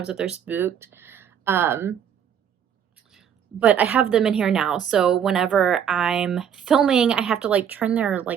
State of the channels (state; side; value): quieter; left; 8.5 dB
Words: they're spooked. But I have them in here now, so whenever I'm filming, I have to like turn their